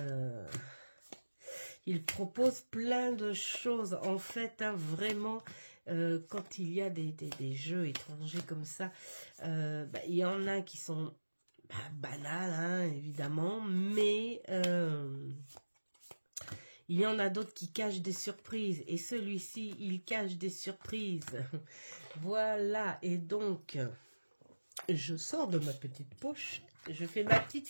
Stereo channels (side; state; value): both; inverted; correlation -1.00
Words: il propose plein de choses, en fait, hein, vraiment, quand il y a des jeux étrangers comme ça, il y en a qui sont banals, hein, évidemment, mais il y en a d'autres qui cachent des surprises, et celui-ci, il cache des surprises. Voilà, et donc, je sors de ma petite poche, je fais ma petite